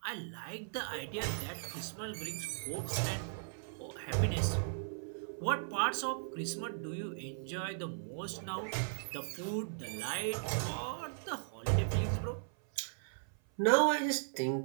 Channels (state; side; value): silent; left; 53 dB below the other